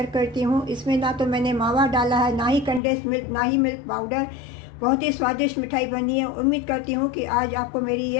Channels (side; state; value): right; drops out; at 2.8 s